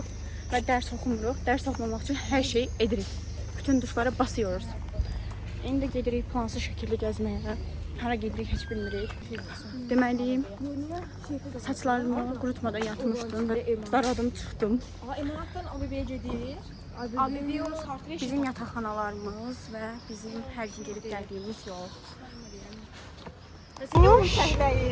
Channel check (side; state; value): both; identical; correlation 1.00